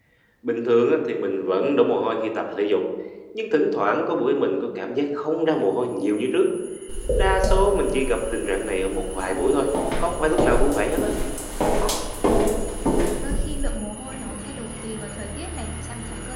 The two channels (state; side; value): identical; both; correlation 1.00